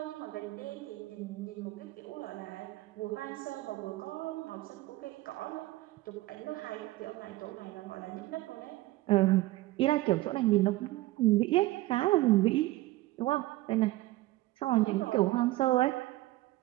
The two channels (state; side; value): quieter; left; 18.0 dB